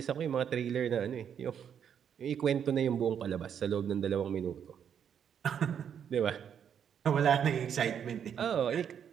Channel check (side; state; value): left; quieter; 8.3 dB